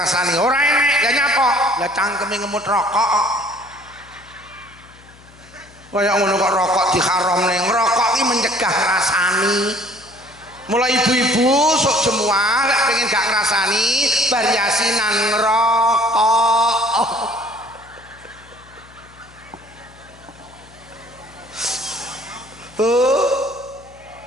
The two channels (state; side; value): noise; left; hum, 24 dB below the sound